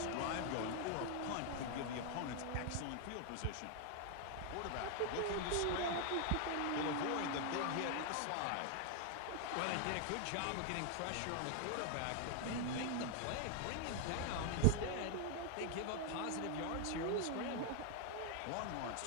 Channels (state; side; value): different; both; correlation 0.00